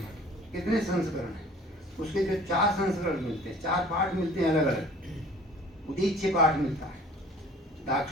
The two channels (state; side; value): normal; both; correlation 0.49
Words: कितने संस्करण हैं। उसके जो 4 संस्करण मिलते हैं, 4 पाठ मिलते हैं अलग अलग। उदीच्य पाठ मिलता है,